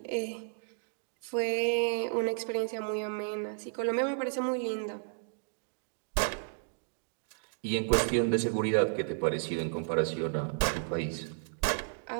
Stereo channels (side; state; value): left; silent; digital silence